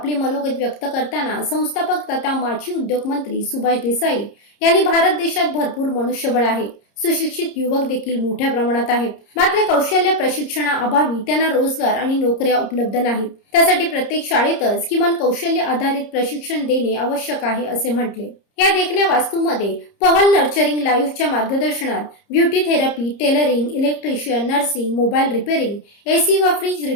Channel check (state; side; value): late; right; 30 ms